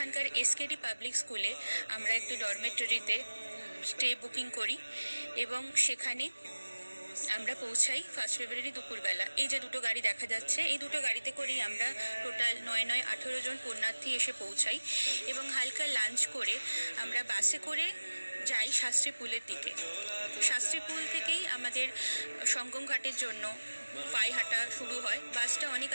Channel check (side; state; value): both; inverted; correlation -1.00